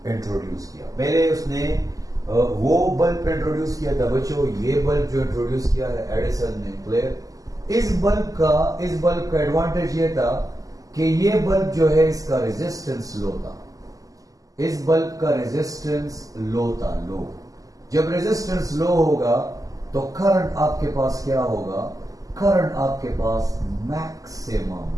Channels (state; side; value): late; left; 0.17 ms